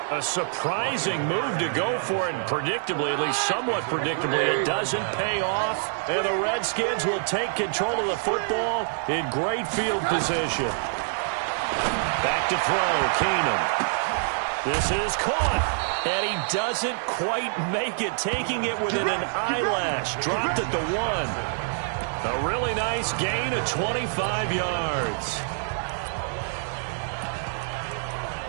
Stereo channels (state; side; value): silent; left; 58 dB below the other